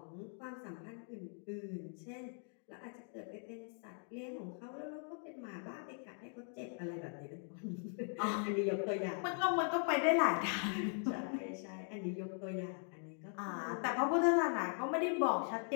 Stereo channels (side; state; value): right; silent; 51 dB below the other